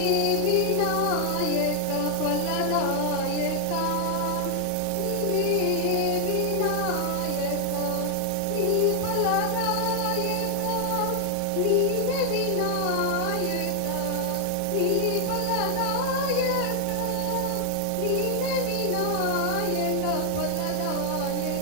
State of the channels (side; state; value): both; different; correlation 0.00